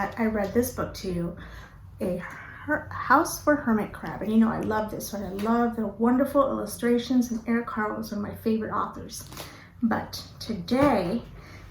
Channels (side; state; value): both; identical; correlation 1.00